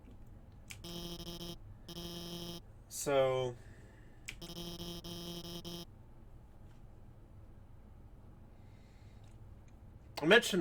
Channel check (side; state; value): both; identical; correlation 1.00